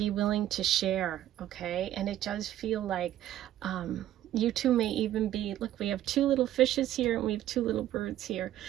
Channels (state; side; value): quieter; left; 12.7 dB